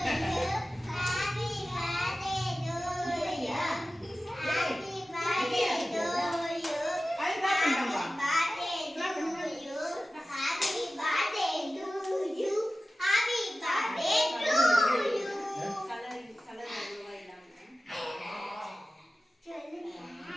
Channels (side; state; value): both; normal; correlation 0.96